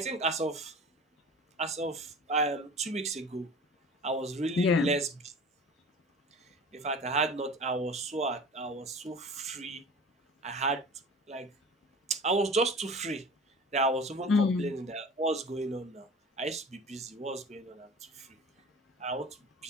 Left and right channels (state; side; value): normal; both; correlation 0.39